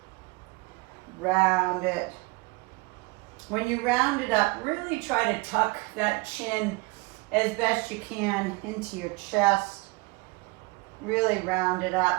Round it. When you round it up, really try to tuck that chin as best you can into your chest. Really round it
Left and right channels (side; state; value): left; quieter; 25.1 dB